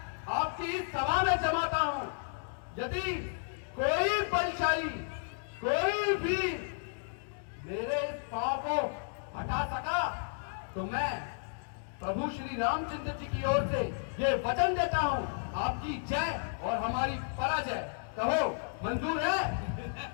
आपकी इस सभा में जमाता हूं। यदि कोई बलशाली, कोई भी मेरे इस पांव को हटा सका, तो मैं प्रभु श्री रामचंद्र जी की ओर से ये वचन देता हूं, आपकी जय और हमारी पराजय। कहो मंजूर है?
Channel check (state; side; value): silent; right; digital silence